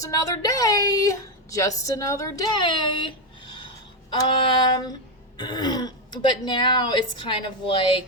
another day. Just another day. But now it's kind of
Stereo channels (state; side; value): normal; both; correlation 0.07